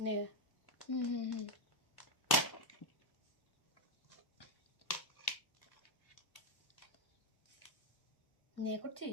নে। হুম। নিয়ে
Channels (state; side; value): late; right; 1.0 ms